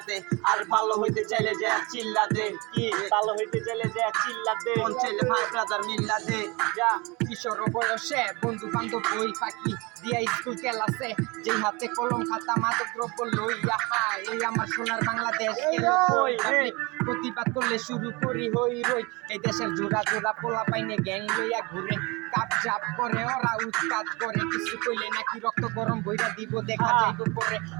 দে আর ভালো হইতে চাইলে যে চিল্লা দে কি ভালো হইতে চাইলে যে চিল্লা দে মন চাইলে ভাই ব্রাদার মিল্লা দে যা কিশোর বয়সে বন্ধু বান্ধব বই ফাঁকি দিয়া স্কুল ক্লাসে যে হাতে কলম খাতা মাদক দ্রব্য লইয়া হায় এই আমার সোনার বাংলাদেশ প্রতিবাদ করলে শুরু করি হই রই এই দেশের জোড়া জোড়া পোলা পাইনে গ্যাং লইয়া ঘুরে কাপ জাপ করে ওরা উৎপাত করে কিছু কইলে নাকি রক্ত গরম বইরা দিব দেখা যাইব পরে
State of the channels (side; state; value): left; quieter; 26.0 dB